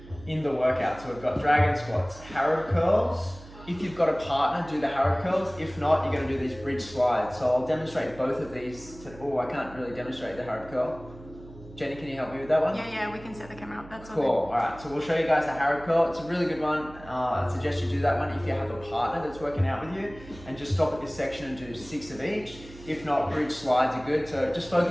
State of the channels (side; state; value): right; noise; hum, 18 dB below the sound